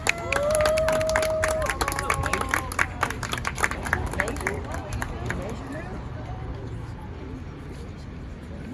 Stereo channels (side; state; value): both; identical; correlation 1.00